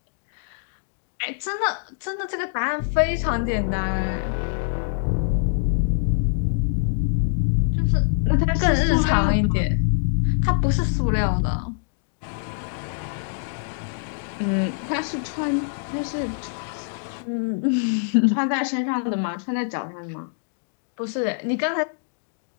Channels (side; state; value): right; silent; digital silence